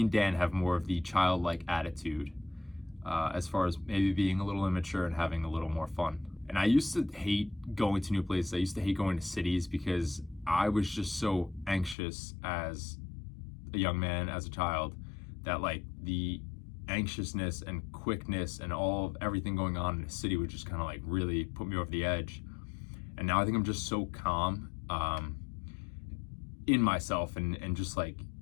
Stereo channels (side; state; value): right; drops out; at 12.0 s